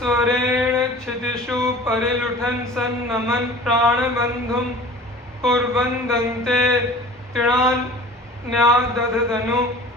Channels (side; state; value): both; normal; correlation 0.42